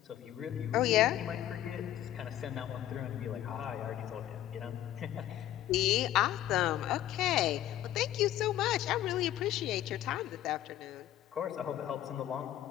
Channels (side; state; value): right; quieter; 12.8 dB